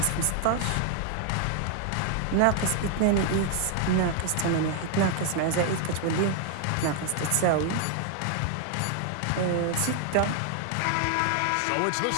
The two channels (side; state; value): both; different; correlation 0.00